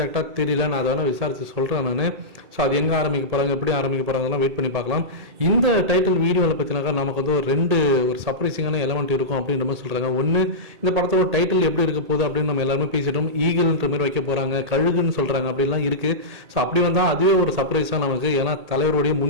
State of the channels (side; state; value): left; late; 2.2 ms